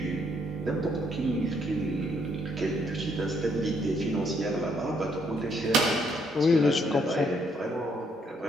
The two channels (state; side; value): normal; both; correlation 0.70